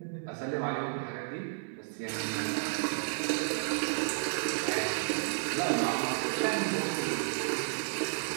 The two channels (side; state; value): left; silent; 56 dB below the other